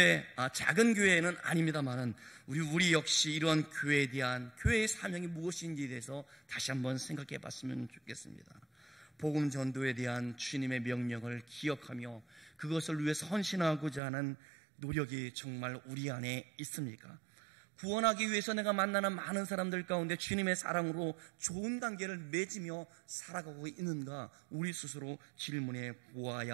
작은 교회는 아닙니다만은 우리 역시 이러한 교회에 대한 교회의 사명이 무엇인지에 대해서 다시 한번 생각해 봤으면 좋겠습니다. 복음 전도에 대한 주님의 명령을 기억하며 그것을 위해서 헌신하고자 하는 노력이 정말 우리 안에 있습니까? 구원하기 위해서 내가 만나는 많은 사람들 가운데 주님의 사랑으로 좋은 관계를 맺으며 살아가고 있는가, 우리 스스로 질문해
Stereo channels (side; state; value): left; drops out; at 14.0 s